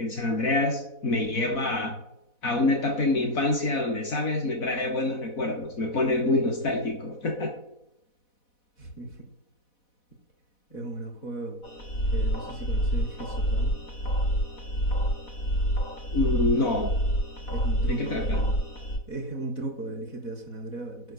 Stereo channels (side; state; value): right; late; 4.1 ms